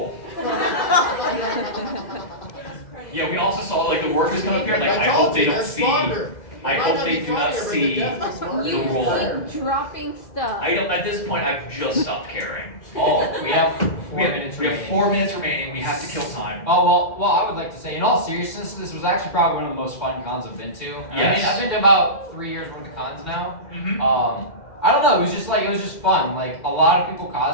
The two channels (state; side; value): late; right; 2.1 ms